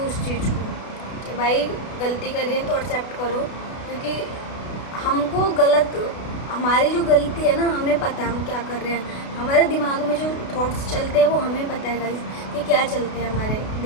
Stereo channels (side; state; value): right; late; 32 ms